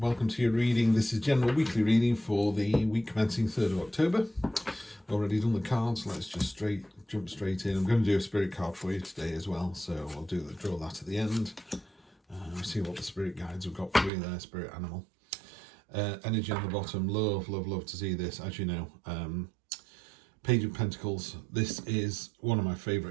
to your reading. This is general weekly reading for the week commencing 3rd of October. Already done the cards, let's just jump straight in. I'm going to do a spirit card for you today as well, so I'll draw that at the end. See what the spirit guides have got for you there, spirit animal. Energy on the bottom, love to see this, as you know. Page of Pentacles, this is one of my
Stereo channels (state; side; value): drops out; left; at 14.1 s